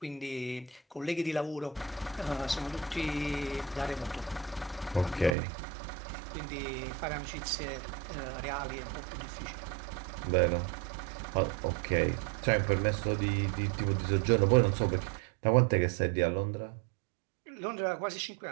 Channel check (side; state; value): left; drops out; at 5.4 s